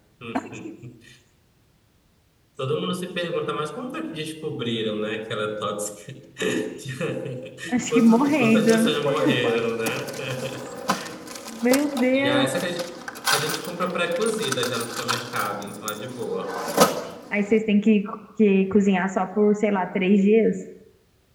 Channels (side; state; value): both; identical; correlation 1.00